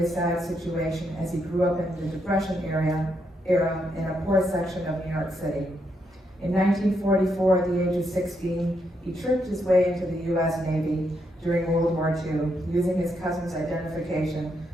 a sad situation as he grew up in the Depression era in a poor section of New York City. In 1944, at the age of 16, he tricked his way into the U.S. Navy during World War II, using his cousin's identification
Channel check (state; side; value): normal; both; correlation 0.79